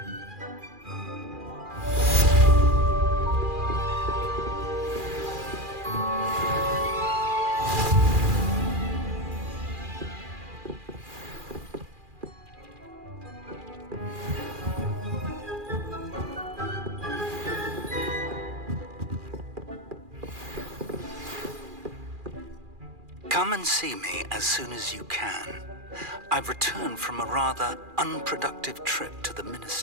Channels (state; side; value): late; left; 2.4 ms